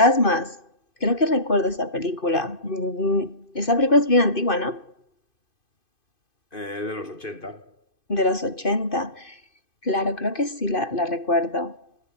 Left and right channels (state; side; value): late; right; 2.5 ms